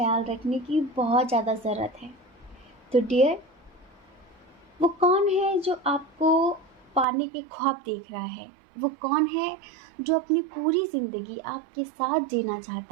रखने की बहुत ज़्यादा ज़रूरत है। तो डियर, वो कौन है जो आपको पाने के ख्वाब देख रहा है? वो कौन है जो अपनी पूरी ज़िंदगी आपके साथ जीना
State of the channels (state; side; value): drops out; left; at 7.1 s